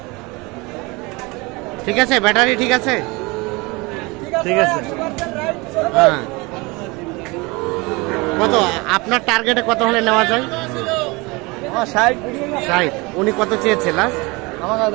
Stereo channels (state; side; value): quieter; left; 25.2 dB